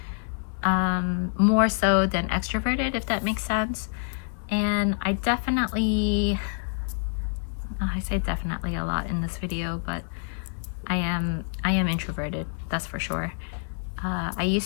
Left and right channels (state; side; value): silent; right; 60 dB below the other